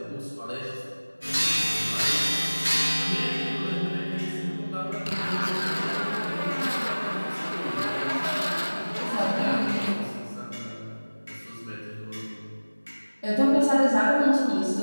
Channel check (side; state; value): both; inverted; correlation -1.00